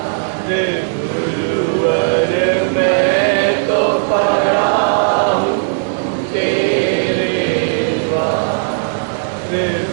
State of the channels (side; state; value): left; silent; digital silence